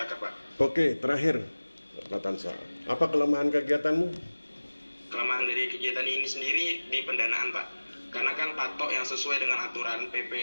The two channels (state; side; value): inverted; both; correlation -1.00